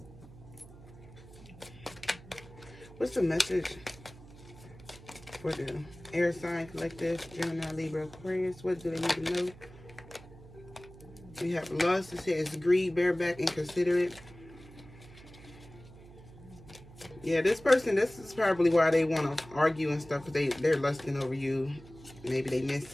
what's the message for the air sign collective, Gemini, Libra, Aquarius? What do they need to know? We have lust. It says greed, bareback, inconsiderate. Yeah, this person, this is probably why they want to argue and stuff, because they're lusting over you. Maybe they miss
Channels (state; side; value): noise; right; hum, 19 dB below the sound